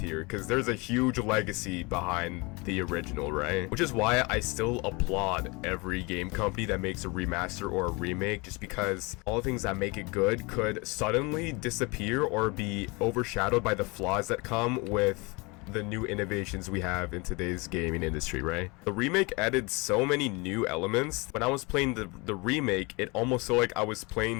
because there's a huge legacy behind the original, right? Which is why I still applaud every game company that makes a remaster or a remake, just because all the things that make it good could suddenly disappear or be overshadowed by the flaws that come with the new innovations we have in today's gaming industry, right? The remake added so many new elements. When I was playing the remake, it almost felt like I was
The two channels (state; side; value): quieter; right; 27.1 dB